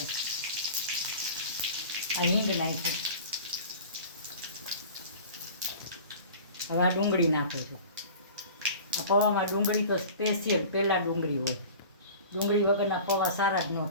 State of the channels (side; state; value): both; inverted; correlation -0.40